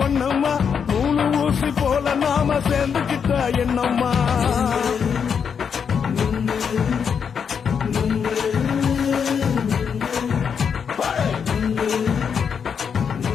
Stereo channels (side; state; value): right; quieter; 6.9 dB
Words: ஒன்னம்மா மூணு ஊசி போல நாம சேர்ந்துக்கிட்டா என்னம்மா